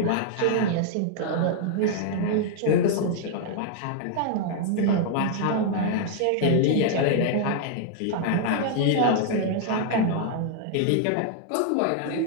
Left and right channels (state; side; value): different; both; correlation 0.00